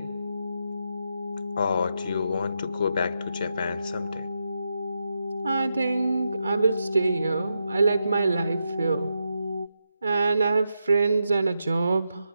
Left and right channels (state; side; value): inverted; both; correlation -0.85